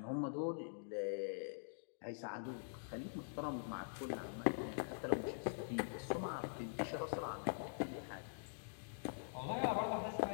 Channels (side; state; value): right; silent; digital silence